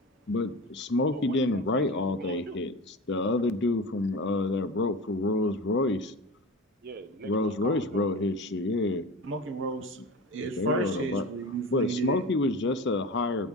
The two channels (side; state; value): both; normal; correlation 0.31